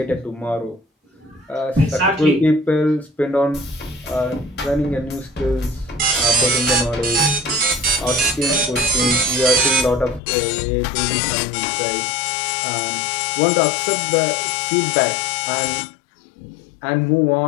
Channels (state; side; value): drops out; right; at 10.2 s